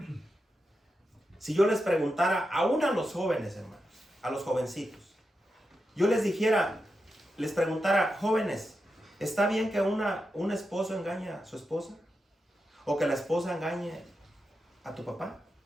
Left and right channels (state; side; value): normal; both; correlation 0.88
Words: si yo les preguntara, aún a los jóvenes, hermanos, a los jovencitos, yo les dijera, les preguntara, jóvenes, ¿está bien que un esposo engañe a su esposa? ¿O que la esposa engañe a tu papá?